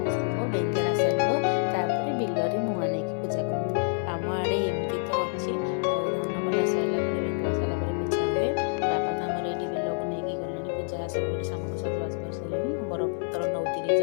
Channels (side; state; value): right; silent; 60 dB below the other